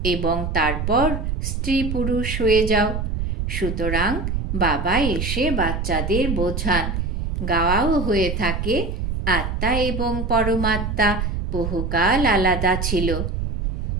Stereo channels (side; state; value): right; noise; rumble, 2 dB below the sound